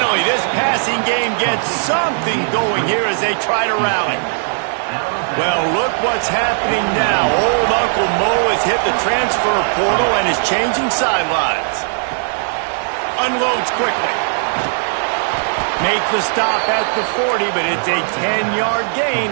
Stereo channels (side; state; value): left; silent; digital silence